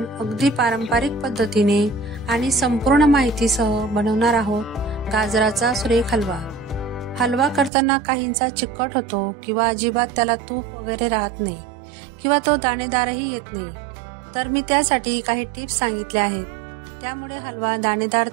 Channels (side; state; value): left; drops out; at 7.7 s